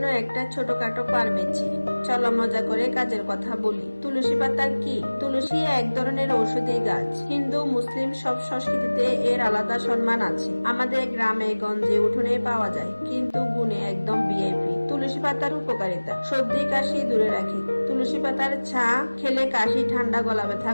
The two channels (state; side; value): inverted; both; correlation -1.00